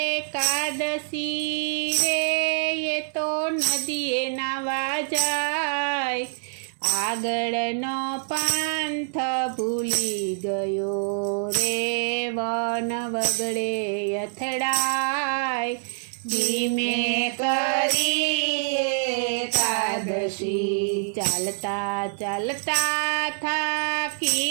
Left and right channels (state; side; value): silent; left; digital silence